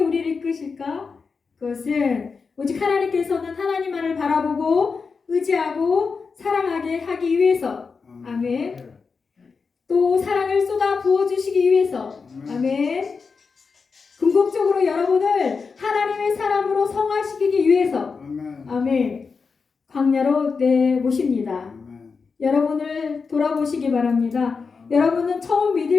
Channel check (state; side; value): quieter; right; 5.0 dB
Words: 우리를 이끄실까? 그것은 오직 하나님께서는 하나님만을 바라보고 의지하고 사랑하게 하기 위해서, 아멘. 또 사랑을 쏟아 부어주시기 위해서, 아멘. 궁극적으로 여러분을 하나님의 사람으로 성화시키기 위해서, 아멘. 광야로 내모십니다. 여러분을 돌아보시기 바랍니다. 여러분은 처음